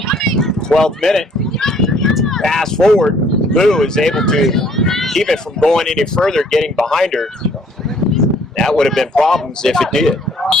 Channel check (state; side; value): normal; both; correlation 0.61